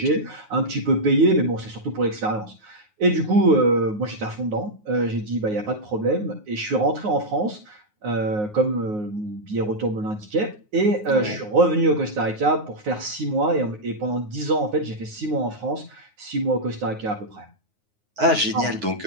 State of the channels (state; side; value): late; left; 9.5 ms